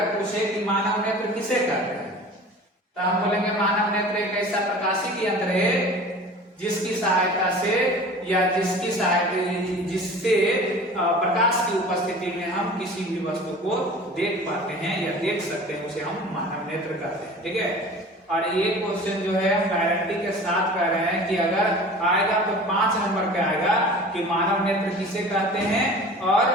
पूछे कि मानव नेत्र किसे कहते हैं तो हम बोलेंगे मानव नेत्र एक ऐसा प्रकाशिक यंत्र है जिसकी सहायता से या जिससे प्रकाश की उपस्थिति में हम किसी भी वस्तु को देख पाते हैं या देख सकते हैं, उसे हम मानव नेत्र कहते हैं। ठीक है, और ये क्वेश्चन जो है गारंटी के साथ कह रहे हैं कि अगर आएगा तो 5 नंबर का आएगा कि मानव नेत्र किसे कहते हैं और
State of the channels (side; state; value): both; normal; correlation 0.41